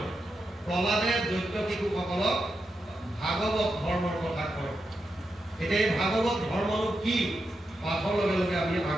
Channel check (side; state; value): both; normal; correlation 0.87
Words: প্ৰহ্লাদে দৈত্য শিশুসকলক ভাগৱত ধৰ্মৰ কথা কয়। এতিয়া এই ভাগৱত ধৰ্মনো কি, পাঠৰ লগে লগে আমি